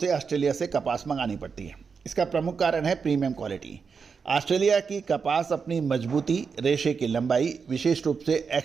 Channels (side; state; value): left; quieter; 5.6 dB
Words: ऑस्ट्रेलिया से कपास मंगानी पड़ती है? इसका प्रमुख कारण है प्रीमियम क्वालिटी। ऑस्ट्रेलिया की कपास अपनी मजबूती, रेशे की लंबाई, विशेष रूप से